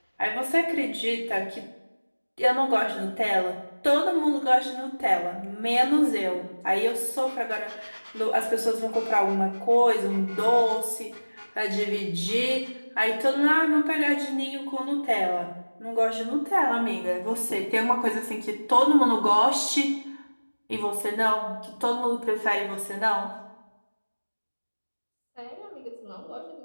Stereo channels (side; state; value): both; inverted; correlation -1.00